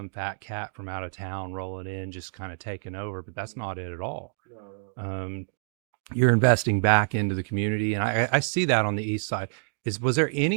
fat cat from out of town rolling in, just kind of taking over. But that's Hmm. not it at all. No, no. Um, you're investing back into the community, and I see that on the east side. Was there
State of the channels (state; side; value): silent; left; digital silence